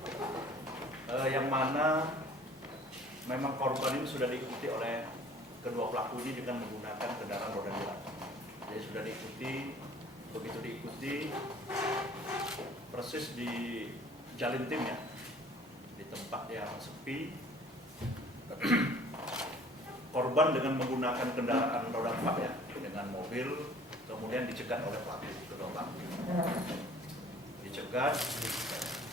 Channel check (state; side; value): normal; both; correlation 0.51